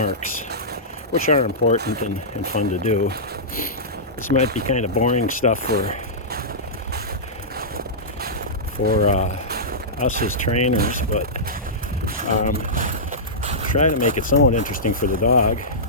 which are important and fun to do. This might be kind of boring stuff for us as trainers, but try to make it somewhat interesting for the dog.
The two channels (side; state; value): both; normal; correlation -0.15